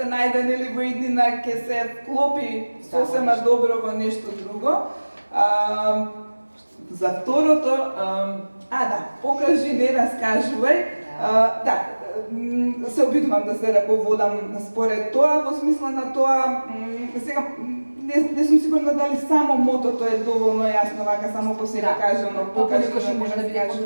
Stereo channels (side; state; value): both; inverted; correlation -1.00